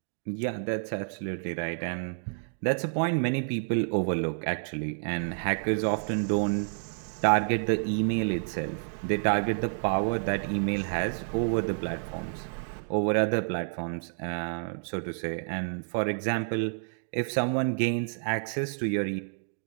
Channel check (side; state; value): left; silent; digital silence